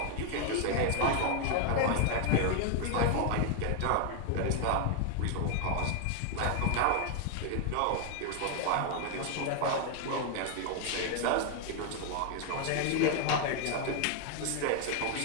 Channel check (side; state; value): both; different; correlation 0.00